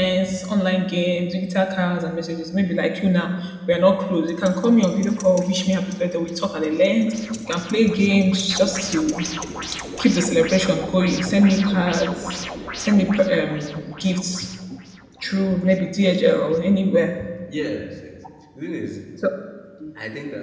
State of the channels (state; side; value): identical; both; correlation 1.00